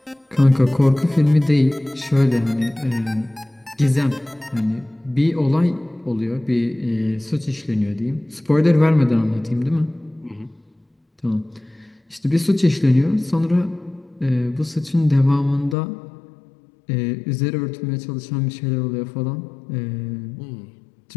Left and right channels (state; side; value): drops out; right; at 15.8 s